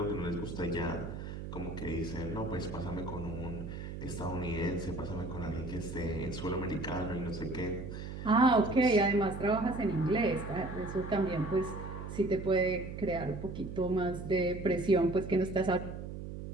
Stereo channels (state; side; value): noise; right; hum, 8 dB below the sound